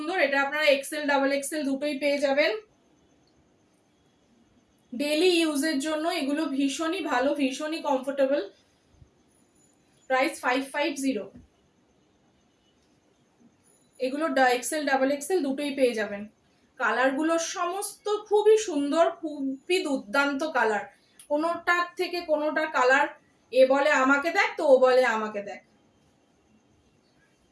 এটা আপনারা এক্সেল ডাবল এক্সেল দুটোই পেয়ে যাবেন। ডেলি ইউজের জন্য এগুলো ভীষণই ভালো, ভীষণই কমফোর্টেবল। প্রাইস 550। এগুলো এক্সেল ডাবল এক্সেল দুটোই পেয়ে যাবেন। কালারগুলো সমস্ত খুবই সুন্দর, খুবই দুর্দান্ত কালার, কোনোটার থেকে কোনোটা কালার এ বলে আমাকে দেখ তো ও বলে আমাকে দেখ।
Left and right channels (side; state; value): both; identical; correlation 1.00